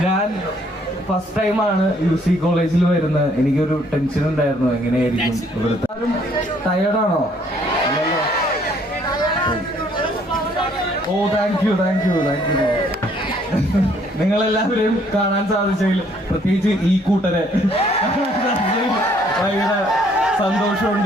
ഞാൻ ഫസ്റ്റ് ടൈമാണ് UC കോളേജിൽ വരുന്നത്. എനിക്കൊരു ടെൻഷൻ ഉണ്ടായിരുന്നു, എങ്ങനെയായിരിക്കും ഇവിടുത്തെ. ടയർഡാണോ? ഓ താങ്ക് യു. നിങ്ങളെല്ലാവരെയും കാണാൻ സാധിച്ചതിൽ, പ്രത്യേകിച്ച് ഈ കൂട്ടരെ ഭയങ്കര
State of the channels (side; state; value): both; normal; correlation 0.64